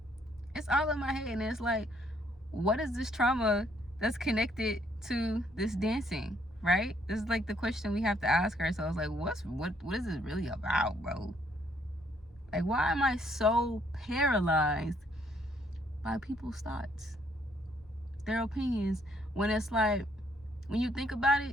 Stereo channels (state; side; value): normal; both; correlation 0.68